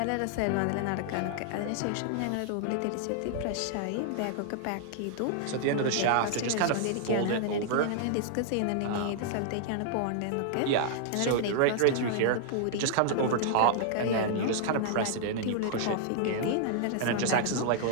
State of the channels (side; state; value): both; different; correlation -0.01